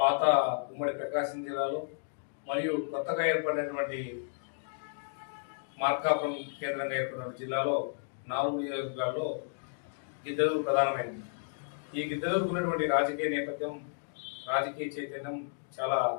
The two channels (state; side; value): silent; right; digital silence